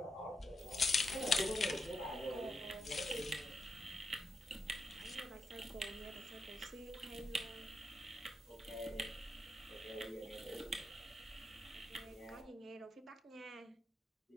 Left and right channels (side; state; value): both; normal; correlation 0.85